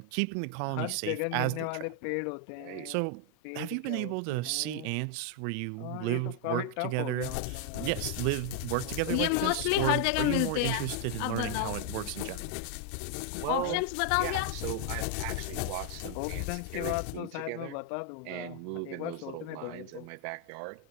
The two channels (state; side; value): different; both; correlation 0.00